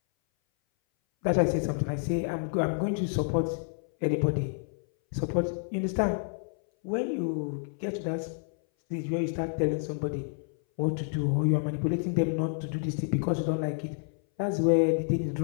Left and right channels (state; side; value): silent; right; 58 dB below the other